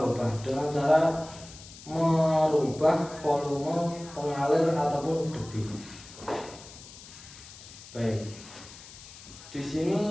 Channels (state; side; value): noise; left; hiss, 17 dB below the sound